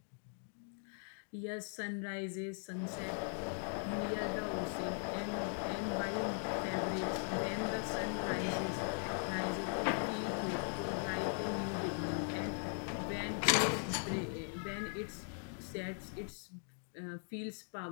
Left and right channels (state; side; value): silent; right; 51 dB below the other